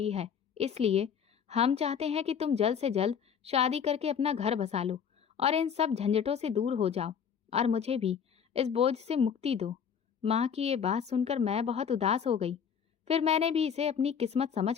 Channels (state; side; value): quieter; right; 7.5 dB